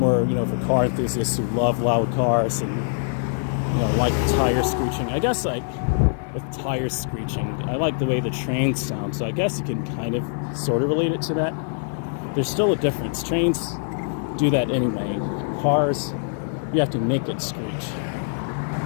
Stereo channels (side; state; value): right; silent; 60 dB below the other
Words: for car enthusiasts who love loud cars and, like tire screeching. I guess, like, with tire screeching, I like the way the trains sound, so I guess you can kind of, sort of relate it to that. There's still a difference. Trains do that anyway. Cars, you have to make it screech.